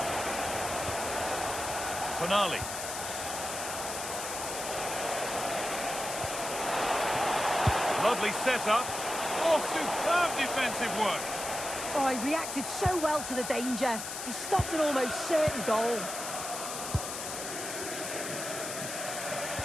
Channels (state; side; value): noise; left; hiss, 6 dB below the sound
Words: Tonali. Lovely setup. Oh, superb defensive work. Oh, he reacted so well to the danger. He stopped an almost certain goal.